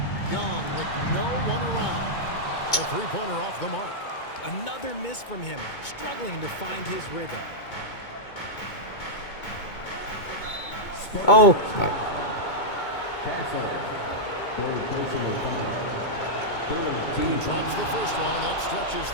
Young with no one around. A three-pointer off the mark. Another miss from him, struggling to find his rhythm. Oh. He drops the first one. That stretches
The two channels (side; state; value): right; late; 2.2 ms